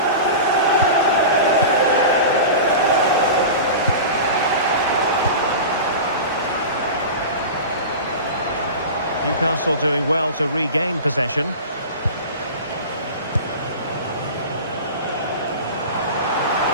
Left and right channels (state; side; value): inverted; both; correlation -0.30